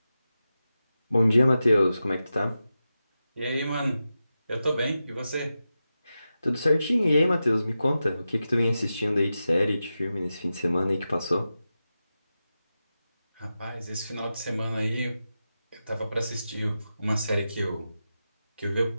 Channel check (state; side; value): inverted; both; correlation -0.92